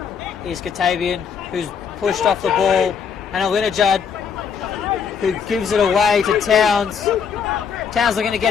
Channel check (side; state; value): right; quieter; 6.8 dB